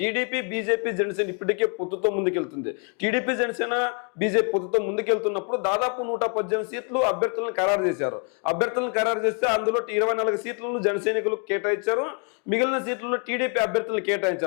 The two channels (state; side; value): quieter; right; 39.3 dB